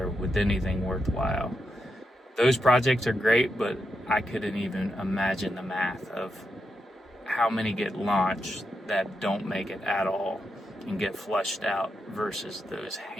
with anything worthwhile. Those projects are great, but I couldn't even imagine the math of how many get launched that don't make it at all and get flushed out versus those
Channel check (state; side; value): normal; both; correlation 0.85